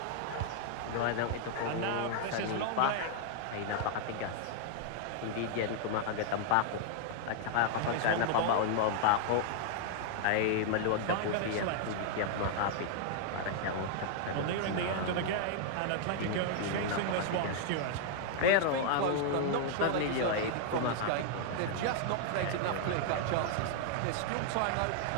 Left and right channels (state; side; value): different; both; correlation 0.00